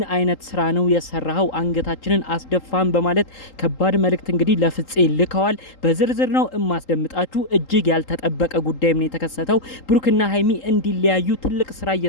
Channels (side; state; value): right; late; 3.8 ms